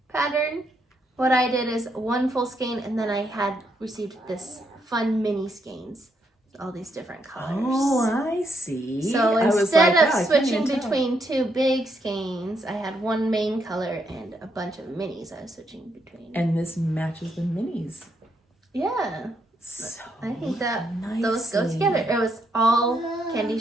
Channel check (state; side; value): normal; both; correlation 0.77